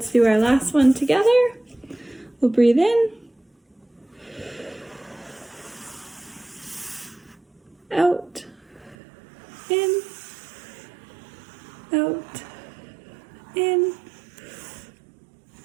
do our last one together. We'll breathe in. Out. In. Out. In.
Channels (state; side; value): drops out; left; at 9.0 s